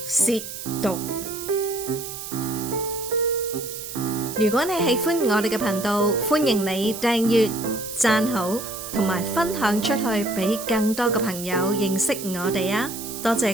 褻瀆。如果你喜歡我哋嘅頻道，歡迎你訂閱、讚好同埋分享出去，俾更多嘅朋友認識我哋啊！多謝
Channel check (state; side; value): noise; right; hiss, 9 dB below the sound